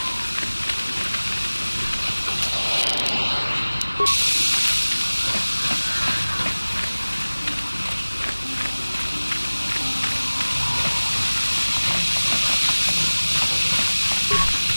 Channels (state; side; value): inverted; both; correlation -1.00